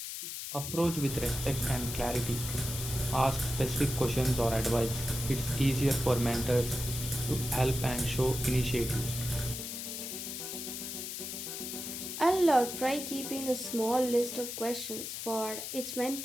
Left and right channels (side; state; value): left; noise; hiss, 6 dB below the sound